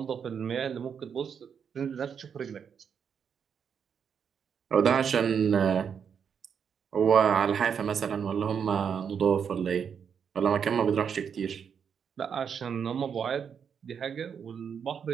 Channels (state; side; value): quieter; left; 7.2 dB